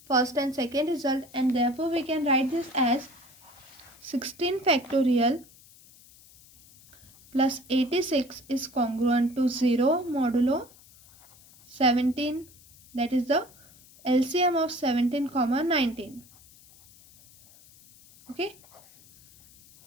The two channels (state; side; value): noise; left; hiss, 25 dB below the sound